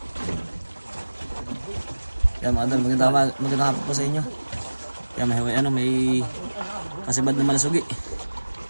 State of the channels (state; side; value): inverted; both; correlation -1.00